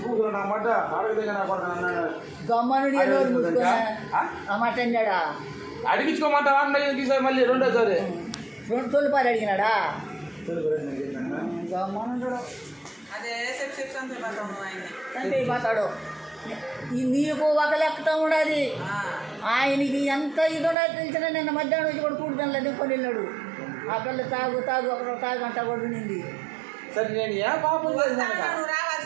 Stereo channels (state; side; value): drops out; left; at 20.8 s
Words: కూతురు నా మాట అడగదే నా కొడుకు అన్నాడు గమ్మనుడి నోరు మూసుకున్నా ఆ మాట అన్నాడా అడిగించుకోమంటావా అన్న ఈసారి మళ్ళీ రెండోసారి 2 తొలిపారు అడిగినాడా గమ్మనుడు అదే సెప్సిప్స్ అంతే పడతాం ఆయన్ని చంపైపోతాడు నీకు ఒక లెక్కతో ఉండదు ఆయనకి ఎంత ఇది ఉండదు తెలిసిన నిన్న మధ్యాహ్నం వచ్చి కూడా కూడుదని దింకొని వెళ్ళాడు ఆ పిల్ల తాగు అక్కడ తాగంట కూడా వినింది సరే నేను ఏ పాపం చేసినాను నువ్వు